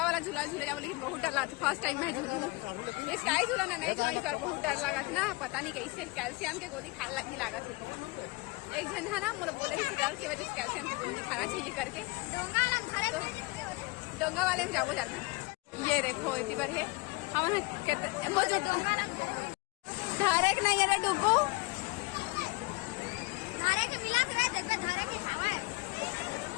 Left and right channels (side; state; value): right; quieter; 25.0 dB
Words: वाला झूला झूले जाओ लेकिन बहुत डर लगा था। फर्स्ट टाइम मैं झूलू स्काई झूला ना नहीं झूला पर बहुत डर लगा था ना, पता नहीं कैसे कैल्शियम के गोली खा लगी लगा थी। एक जन है ना मुझे बोले कि डर की वजह से कैल्शियम की गोली खाना चाहिए करके डोंगा वाले में जाओ जाता। ये देखो इतनी बार है हम धारे नहीं है डुगू